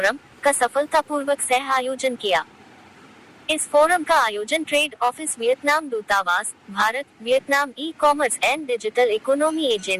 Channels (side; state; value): both; identical; correlation 1.00